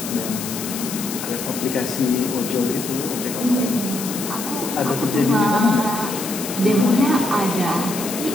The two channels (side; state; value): left; noise; hiss, 7 dB below the sound